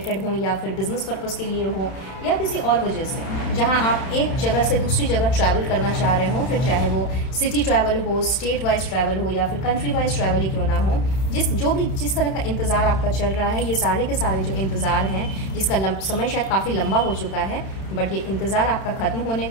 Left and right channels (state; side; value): late; right; 31 ms